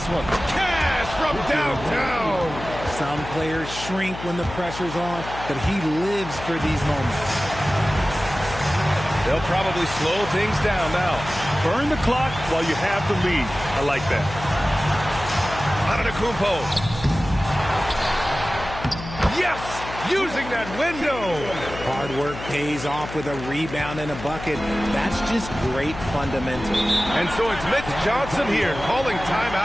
one. Cash from downtown. Some players shrink when the pressure's on, but he lives for these moments. They'll probably slow things down now. Burn the clock while you have the lead. I like that. Antetokounmpo. Yes! Using that window. Hard work pays off with a rebound and a bucket. That's just great fundamentals. And so it's Mitch Johnson here calling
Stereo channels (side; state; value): left; noise; hum, 11 dB below the sound